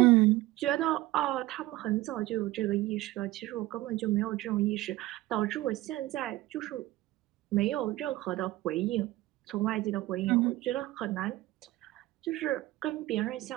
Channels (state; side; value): quieter; left; 17.3 dB